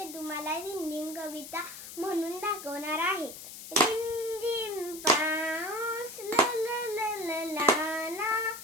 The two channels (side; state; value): left; noise; hiss, 12 dB below the sound